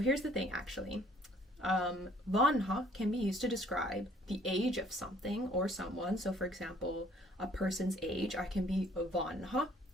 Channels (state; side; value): normal; both; correlation 0.59